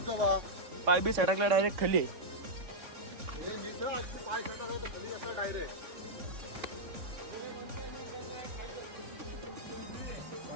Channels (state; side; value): late; left; 3.6 ms